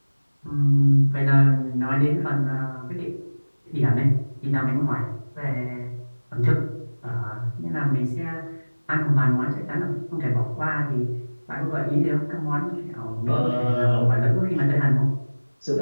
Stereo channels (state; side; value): inverted; both; correlation -1.00